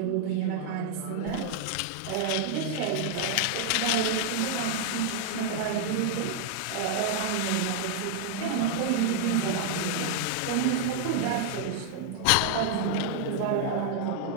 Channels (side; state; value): both; different; correlation 0.00